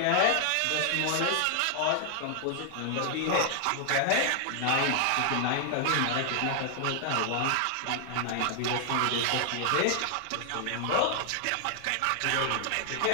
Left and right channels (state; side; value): different; both; correlation 0.00